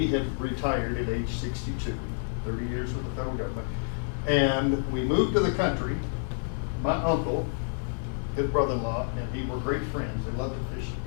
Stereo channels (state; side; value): silent; right; digital silence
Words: had retired at age 62, 30 years with the federal government. And we moved to the country. My uncle his brother-in-law, and he were great friends. They loved to fish